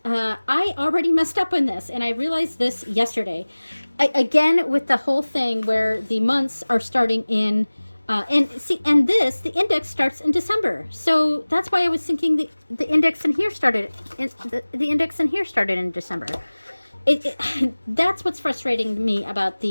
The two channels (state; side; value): inverted; both; correlation -1.00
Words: I already messed up on this, and I realized this yesterday. Again, with the whole thing where the months are starting in, and the index starts in December. So that's why I was thinking the index in here started, the index in here started in December. That's what's frustrating to me about